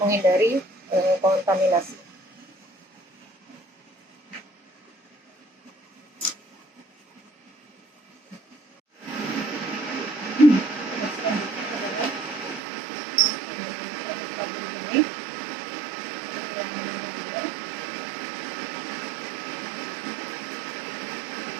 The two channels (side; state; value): left; drops out; at 12.6 s